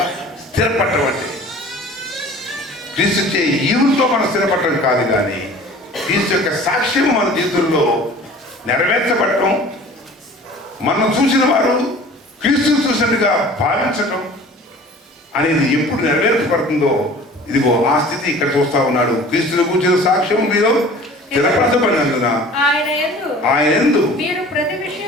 స్థిరపడటం అంటే క్రీస్తు చే ఈవులతో మనం స్థిరపడటం కాదు, కానీ క్రీస్తు యొక్క సాక్ష్యం మన జీవితంలో నెరవేర్చబడటం, మనం చూసిన వారు క్రీస్తుని చూసినట్టుగా భావించటం అనేది ఎప్పుడు నెరవేర్చబడుతుందో, ఇదిగో ఆ స్థితి ఇక్కడ చూస్తా ఉన్నాడు. క్రీస్తుని కూర్చున్న సాక్ష్యం మీలో స్థిరపరచబడినందున ఆయన యందు మీరు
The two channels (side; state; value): both; normal; correlation 0.45